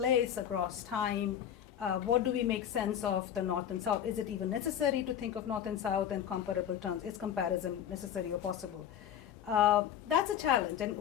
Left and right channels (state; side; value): quieter; right; 9.7 dB